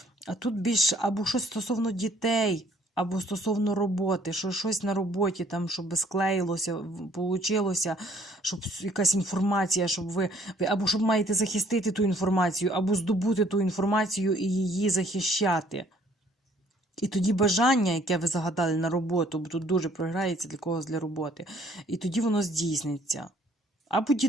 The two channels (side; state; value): both; normal; correlation 0.61